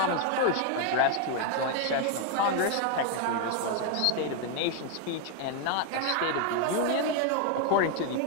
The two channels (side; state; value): both; different; correlation 0.01